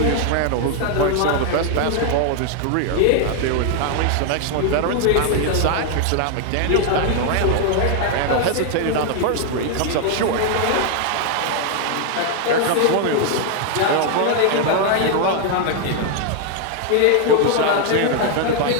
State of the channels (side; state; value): both; different; correlation 0.00